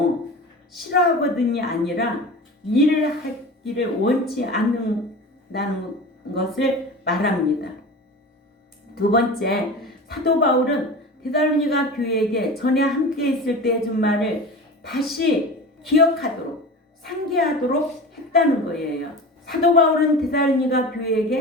싫어하거든이 아니라 일을 하기를 원치 않는다는 것을 말합니다. 두 번째, 사도 바울은 데살로니가 교회에게 전에 함께 있을 때 해준 말을 다시 기억하도록 상기하도록 했다는 거예요. 사도 바울은 데살로니가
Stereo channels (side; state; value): both; normal; correlation 0.33